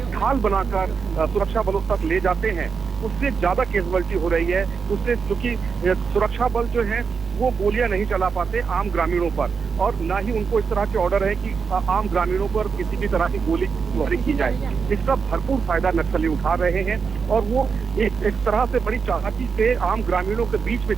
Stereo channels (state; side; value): quieter; left; 5.6 dB